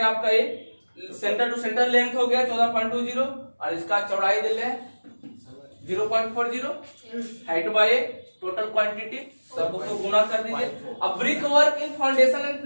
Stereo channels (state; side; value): inverted; both; correlation -1.00